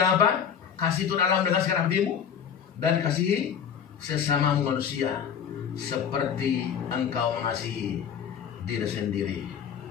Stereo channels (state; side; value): quieter; right; 7.9 dB